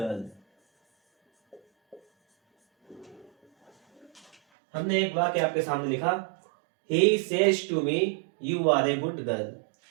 हमने एक वाक्य आपके सामने लिखा, he says to me you are a good girl.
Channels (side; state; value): left; drops out; at 4.4 s